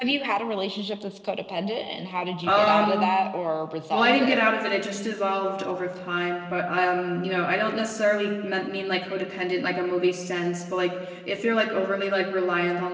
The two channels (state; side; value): identical; both; correlation 1.00